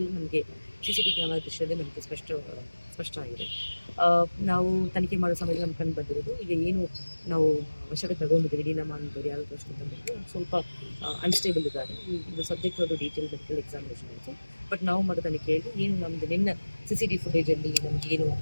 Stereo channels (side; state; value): both; inverted; correlation -1.00